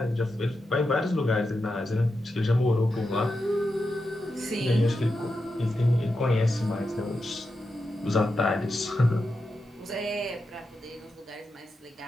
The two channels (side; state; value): both; normal; correlation 0.88